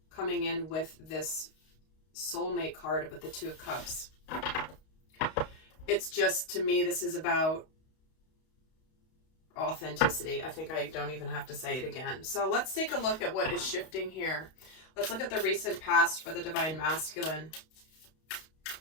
coming in with this soulmate card with the Two of Cups, it's just, to me, this is about authenticity. I think I don't even have to say it again. So let's take a look at what is shifting here. Let's look at the recent past for the divine masculine.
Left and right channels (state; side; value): late; right; 32 ms